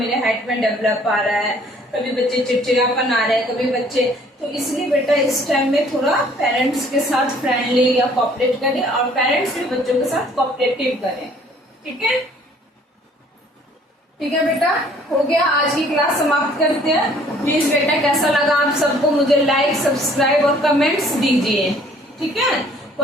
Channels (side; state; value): both; normal; correlation 0.57